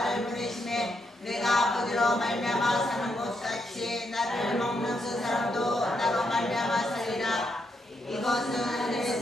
부르심에 내가 아버지로 말미암아 사는 것 같이 나를 먹는 그 사람도 나로 말미암아 살리라. 이것은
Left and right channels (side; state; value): both; normal; correlation 0.79